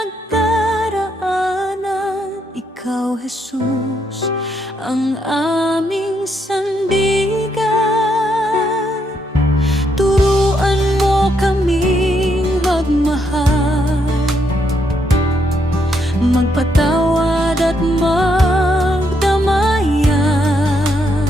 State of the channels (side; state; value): both; normal; correlation 0.76